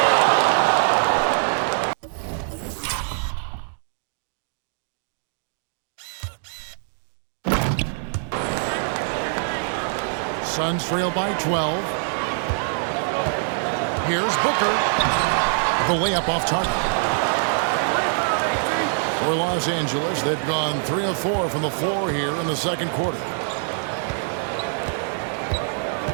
Suns trail by 12. Here's Booker. The layup off target. For Los Angeles, they've gone 3 of 4 from the floor here in the second quarter.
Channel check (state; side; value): silent; left; 60 dB below the other